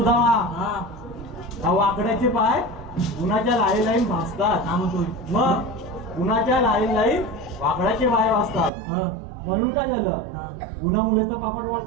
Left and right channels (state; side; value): drops out; left; at 8.7 s